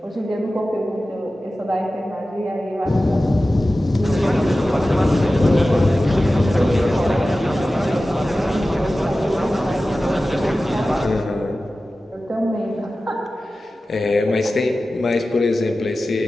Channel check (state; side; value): normal; both; correlation 0.95